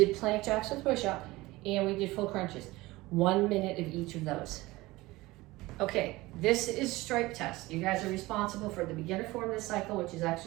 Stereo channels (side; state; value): left; quieter; 20.0 dB